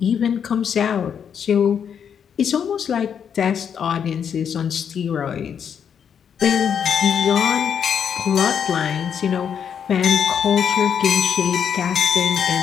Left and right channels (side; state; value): right; quieter; 7.8 dB